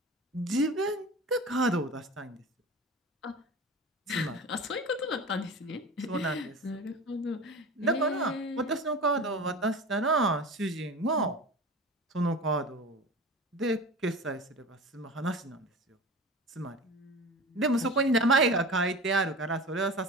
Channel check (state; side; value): normal; both; correlation 0.33